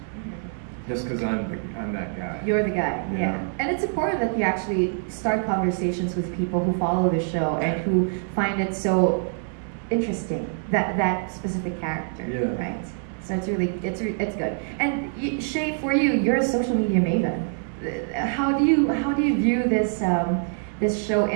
Just because I'm that guy. You're the guy, yeah. And it's important that you actually start conversations with people who follow the show and who find it so interesting, that specific character, right? So it's good. And Shay, for you, you're a social media maven. How do you view this show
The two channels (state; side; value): silent; left; digital silence